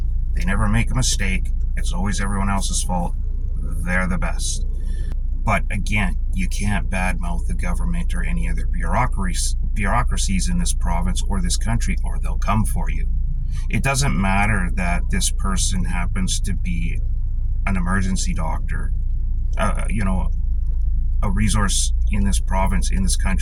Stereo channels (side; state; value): both; identical; correlation 1.00